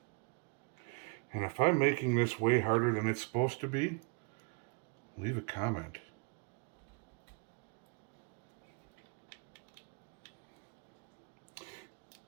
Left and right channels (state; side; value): quieter; left; 32.3 dB